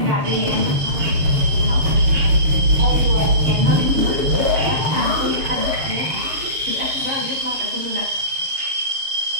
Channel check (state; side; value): late; left; 7.1 ms